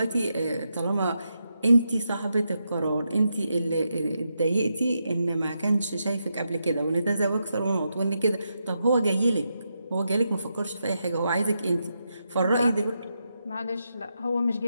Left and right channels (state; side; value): inverted; both; correlation -0.84